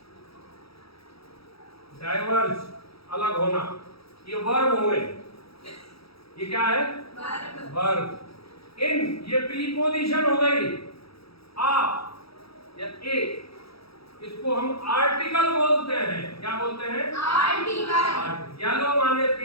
डाइवर्ज, अलग होना, ये वर्ब हो गए, ये क्या है, वर्ब। इन, ये प्रीपोजिशन हो गई, आ या ए, इसको हम आर्टिकल बोलते हैं। क्या बोलते हैं, आर्टिकल। येलो माने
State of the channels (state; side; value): late; right; 0.77 ms